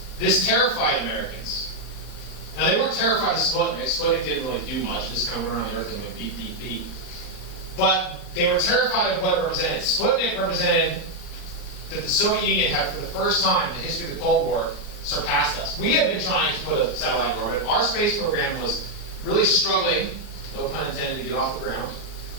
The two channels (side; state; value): right; late; 39 ms